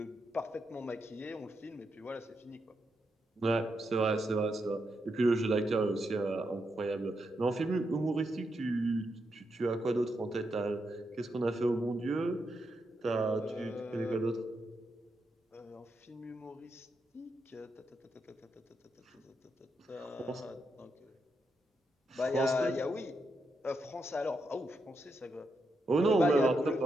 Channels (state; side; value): normal; both; correlation 0.83